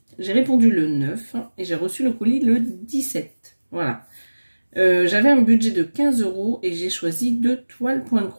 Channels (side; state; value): both; inverted; correlation -1.00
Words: répondu le 9 et j'ai reçu le colis le 17. Voilà. J'avais un budget de 15 € et j'ai choisi 2 toiles point de